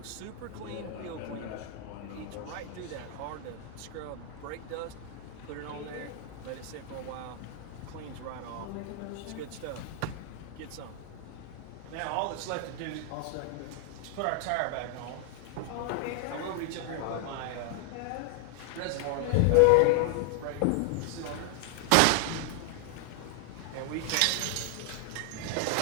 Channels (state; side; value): different; both; correlation 0.00